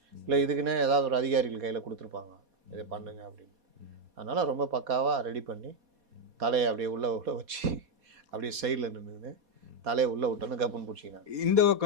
இல்லை இதுக்குன்னே ஏதாவது ஒரு அதிகாரிகள் கையில் கொடுத்துருப்பாங்க, இதை பண்ணுங்க அப்படின்னு. அதனால் ரொம்ப பக்காவாக ரெடி பண்ணி தலையை அப்படியே உள்ள வச்சு அப்படியே சைடில் நின்றுன்னு தலையை உள்ளே விட்டோன்னு கப்புன்னு பிடிச்சிக்கினாங்க. இந்த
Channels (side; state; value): left; late; 4.2 ms